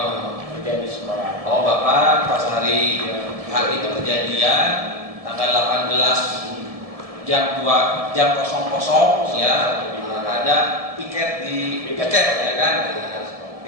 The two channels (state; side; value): late; left; 1.7 ms